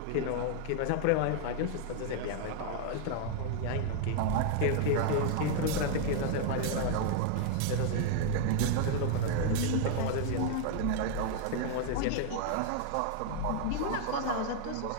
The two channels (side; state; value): both; different; correlation 0.00